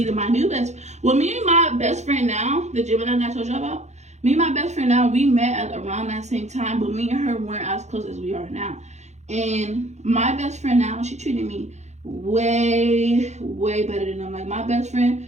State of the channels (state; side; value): late; left; 0.33 ms